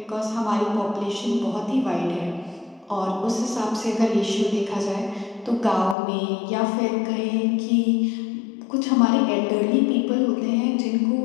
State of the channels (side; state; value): right; drops out; at 6.0 s